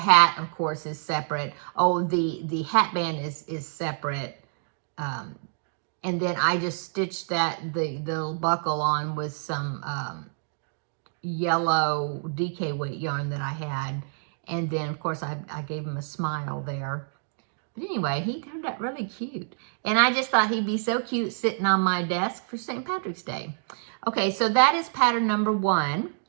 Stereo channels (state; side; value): silent; left; digital silence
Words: of course, is separate. Oh, the hat band is separate. And then I just stitched the little buckle on with some yellow DK weight yarn that I had. And then, of course, I gave him a smile there. But anyway, he turned out really cute. And I just thought he'd be so cute sitting on my desk for St. Patrick's Day. Okay, so that is pattern number 1.